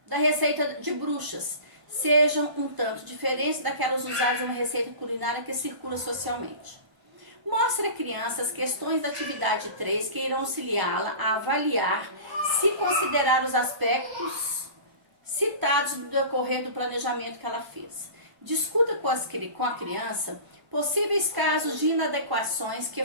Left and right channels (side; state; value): left; late; 1.0 ms